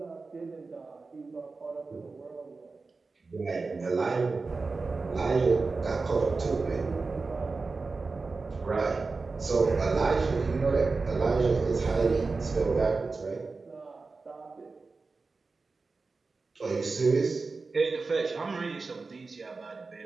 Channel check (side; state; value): left; quieter; 4.0 dB